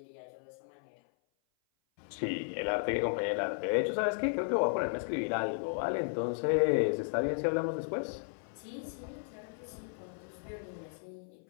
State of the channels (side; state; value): right; silent; 55 dB below the other